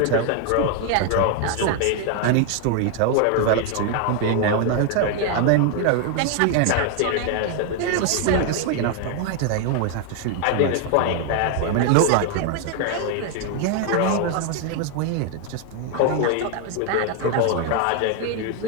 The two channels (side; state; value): both; different; correlation 0.01